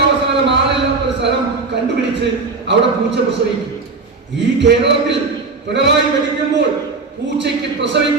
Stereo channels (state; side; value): quieter; left; 4.1 dB